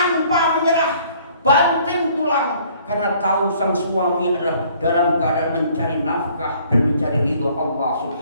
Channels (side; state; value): both; inverted; correlation -0.59